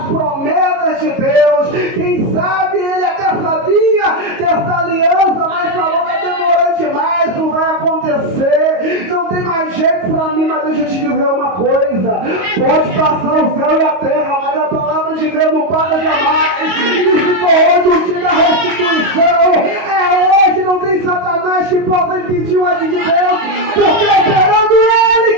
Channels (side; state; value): left; late; 22 ms